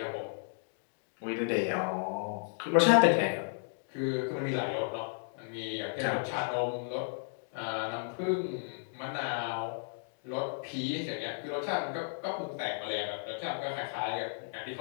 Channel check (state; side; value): silent; right; digital silence